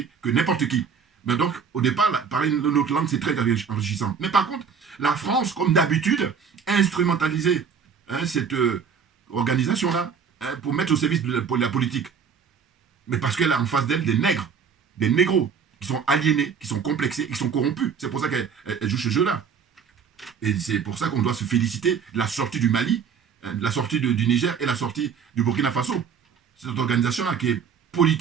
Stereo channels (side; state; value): left; quieter; 6.5 dB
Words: que n'importe qui. Mais donc, au départ, parler une autre langue, c'est très enrichissant. Mais par contre, la France, comme d'habitude, a instrumentalisé cette organisation-là pour mettre au service de la politique. Mais parce qu'elle a en face d'elle des nègres. des négros qui sont aliénés, qui sont complexés, qui sont corrompus. C'est pour ça qu'elle joue ce jeu-là. Et c'est pour ça qu'on doit se féliciter de la sortie du Mali, de la sortie du Niger et la sortie du Burkina Faso. Cette organisation-là qui est